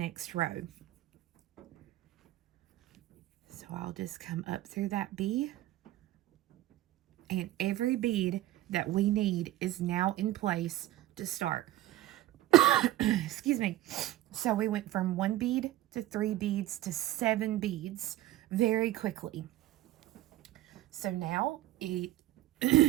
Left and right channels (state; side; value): quieter; left; 14.8 dB